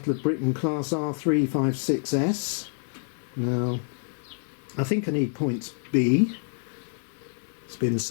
of Britain class R.356S. Now I think I need points B. It's been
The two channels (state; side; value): silent; right; 60 dB below the other